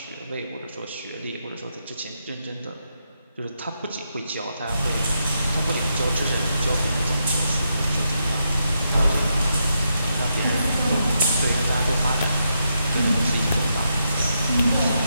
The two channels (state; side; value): inverted; both; correlation -0.83